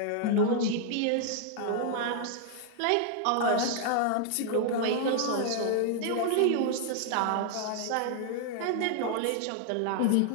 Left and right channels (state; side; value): different; both; correlation 0.00